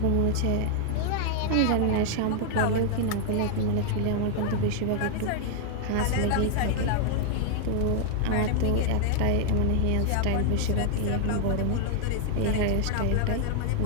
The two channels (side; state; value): both; different; correlation 0.00